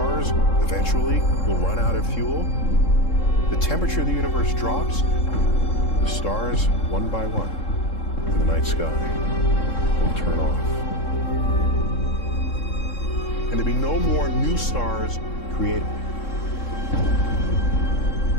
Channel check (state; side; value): late; right; 3.7 ms